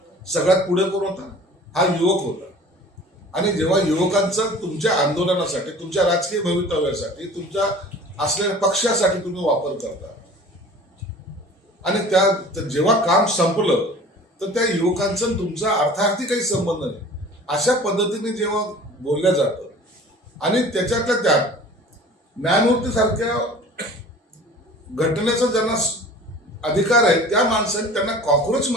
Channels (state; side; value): normal; both; correlation 0.44